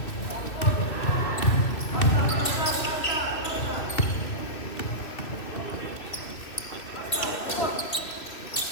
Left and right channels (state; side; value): late; right; 2.8 ms